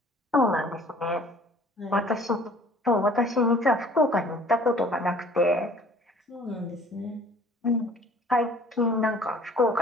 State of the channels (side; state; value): both; normal; correlation 0.52